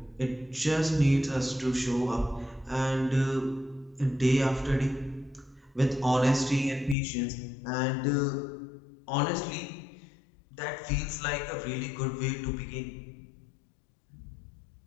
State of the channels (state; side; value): drops out; right; at 7.0 s